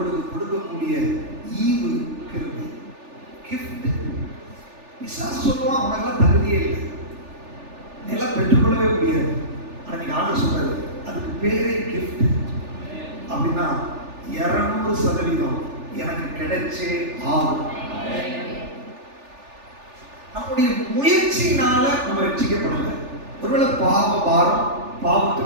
கொடுக்கக்கூடிய ஈவு கிருபை, கிஃப்ட். பிசாசு சொல்லுவான், உனக்கெல்லாம் தகுதியே இல்லை, நிலம் பெற்றுக்கொள்ளவே முடியாது. ஆனா நீங்க ஆண்டு சொல்றது, அதுக்கு பேரே கிஃப்ட். அப்படின்னா 200% எனக்கு கிடைச்சே ஆகும். நம்முடைய முயற்சியினால நம்ம ரட்சிக்கப்படல. ஒருவேளை பாவ பாரம்,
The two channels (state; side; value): late; left; 3.4 ms